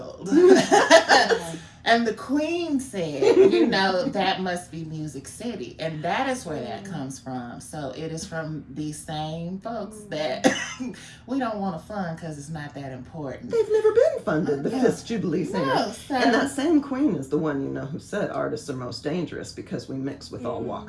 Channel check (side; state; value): both; identical; correlation 1.00